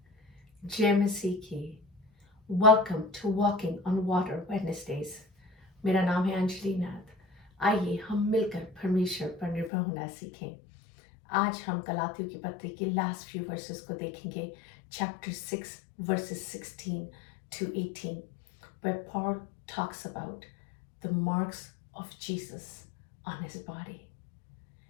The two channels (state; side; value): drops out; right; at 9.7 s